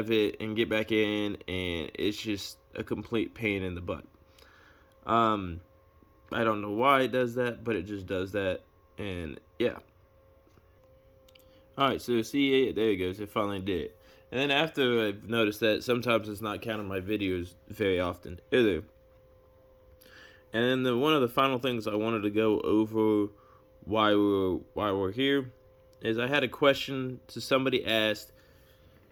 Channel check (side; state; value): both; identical; correlation 1.00